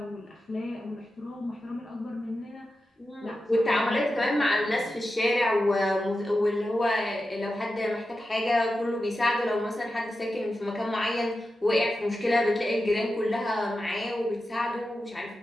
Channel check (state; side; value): normal; both; correlation 0.91